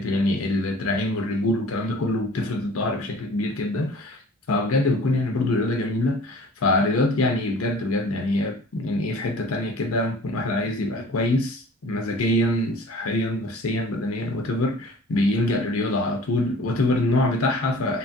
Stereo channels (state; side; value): normal; both; correlation 0.46